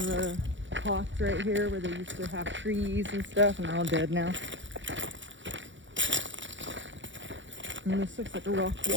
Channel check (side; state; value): left; late; 0.54 ms